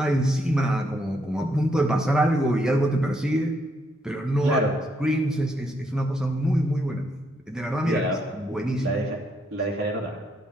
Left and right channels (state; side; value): normal; both; correlation 0.75